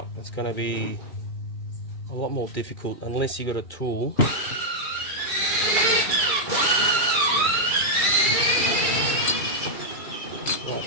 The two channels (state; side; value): late; right; 2.3 ms